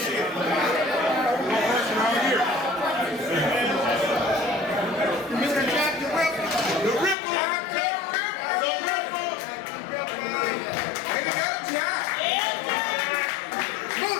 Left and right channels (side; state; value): right; drops out; at 7.2 s